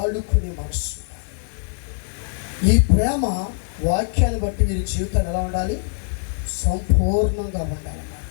మనసు. ఈ ప్రేమ వాక్యాన్ని బట్టి మీరు జీవితాన్ని ఎలా ఉండాలి? సంపూర్ణంగా ఉండాలన్నమాట.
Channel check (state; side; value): silent; right; digital silence